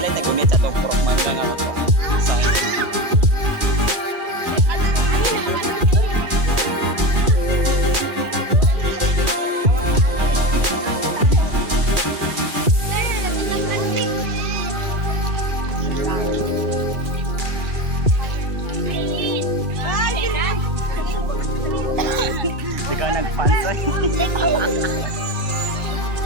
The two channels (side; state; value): left; late; 2.4 ms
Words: nagumit sa itong proman lang ako. Ikaw nagpansa.